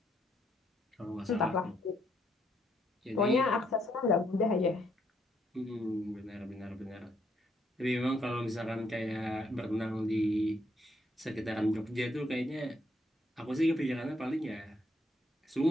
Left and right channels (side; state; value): both; normal; correlation 0.73